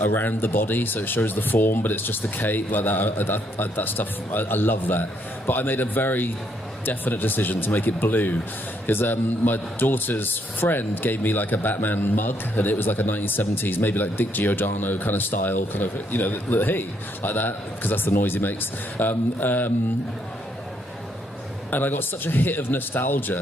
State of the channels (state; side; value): normal; both; correlation 0.72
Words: around the body, so it shows the form, but it's just the cape like that. That stuff, I love that. But I made a very definite decision to make it blue because my daughter's friend gave me a Batman mug, and it was a 1970s, maybe Dick Giordano kind of style, kind of hey, like that, because that's the noise he makes. And I got such a hit of